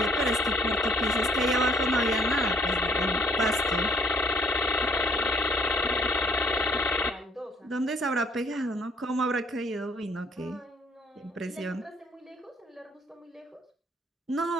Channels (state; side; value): normal; both; correlation 0.62